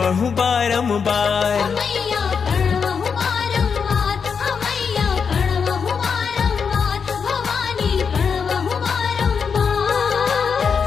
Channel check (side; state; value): right; quieter; 6.1 dB